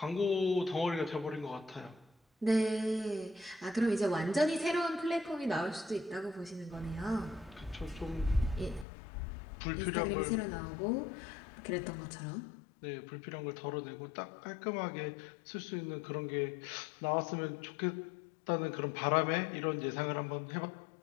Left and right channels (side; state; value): right; drops out; at 8.8 s